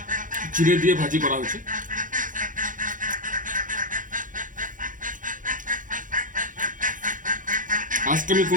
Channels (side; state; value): left; late; 0.38 ms